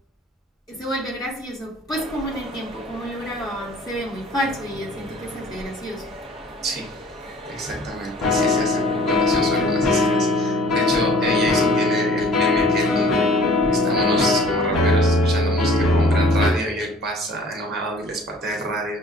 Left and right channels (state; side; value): normal; both; correlation 0.51